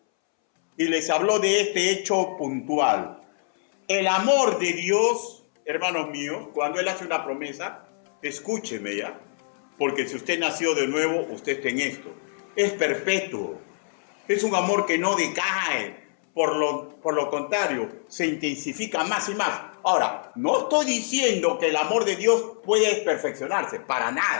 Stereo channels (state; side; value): silent; right; 62 dB below the other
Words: Y les habló de este hecho puntual. El amor de Dios, hermanos míos, cuando Él hace una promesa, escúcheme ya, porque si usted nació de nuevo, usted está en esto. Es perpetuo. Es un amor que no decae. Por lo contrario, se intensifica más y más. Ahora, no estoy diciendo que el amor de Dios puede perfeccionarse, para